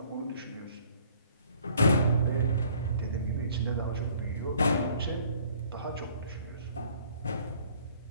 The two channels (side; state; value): both; inverted; correlation -0.58